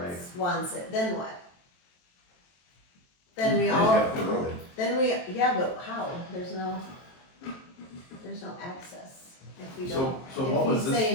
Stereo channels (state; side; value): late; right; 23 ms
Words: it, then what? Then we They all, have the road. yeah, but how? There's no access if we don't. So what was If he's this,